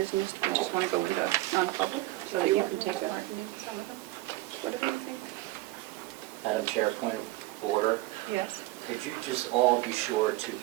We just want to go into non-public so that you can take part in some of them. What do you think? Madam Chair, point of order. Yes. Could you just all be sure to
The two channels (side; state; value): left; quieter; 18.5 dB